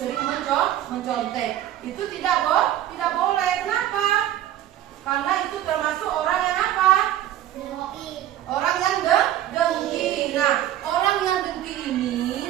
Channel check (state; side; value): quieter; left; 12.4 dB